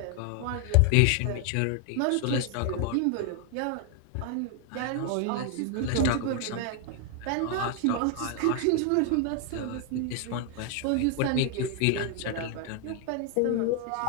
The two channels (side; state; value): both; different; correlation 0.00